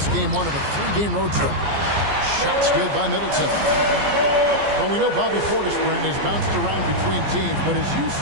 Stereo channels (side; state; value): left; late; 14 ms